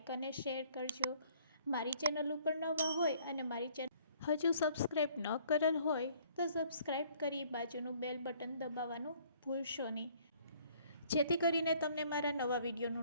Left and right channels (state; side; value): inverted; both; correlation -0.60